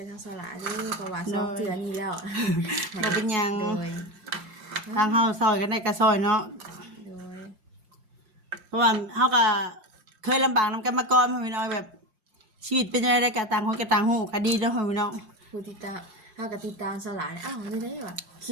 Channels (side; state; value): left; late; 5.7 ms